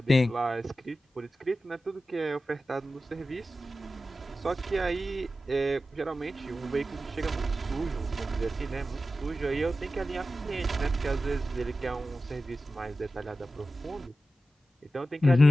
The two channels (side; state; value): both; normal; correlation 0.93